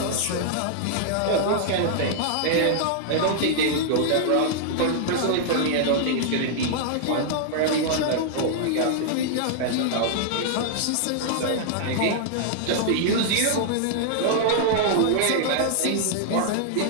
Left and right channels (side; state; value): both; different; correlation -0.01